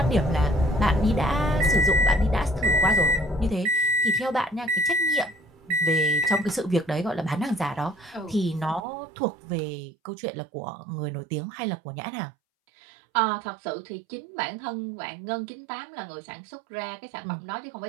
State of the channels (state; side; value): drops out; left; at 8.8 s